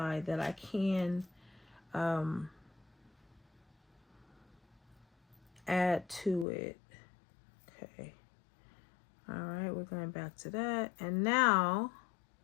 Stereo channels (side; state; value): right; drops out; at 6.5 s